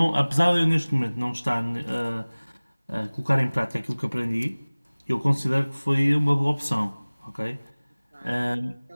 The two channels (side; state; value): both; inverted; correlation -1.00